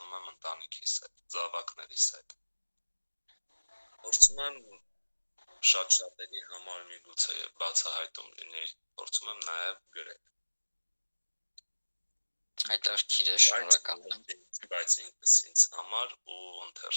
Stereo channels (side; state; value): both; inverted; correlation -1.00